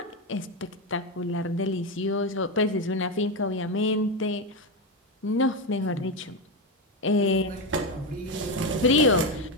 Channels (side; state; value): both; normal; correlation 0.11